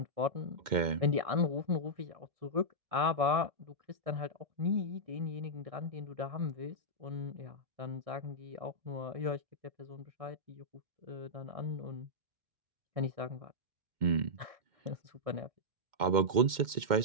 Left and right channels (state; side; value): late; left; 2.1 ms